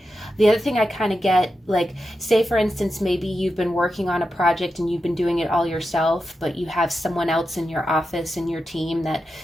The other thing I kind of get, like, say for instance, maybe you've been working on a project and you've been doing it all yourself, but you have someone else in your office, in your team that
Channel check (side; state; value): both; normal; correlation 0.89